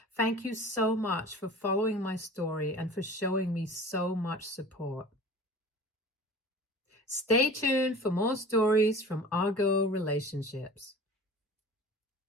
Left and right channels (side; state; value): both; normal; correlation 0.40